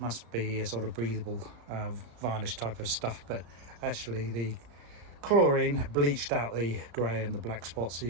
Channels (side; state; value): left; late; 34 ms